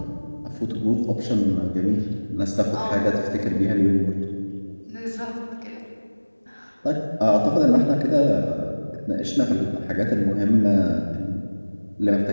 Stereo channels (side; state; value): both; inverted; correlation -1.00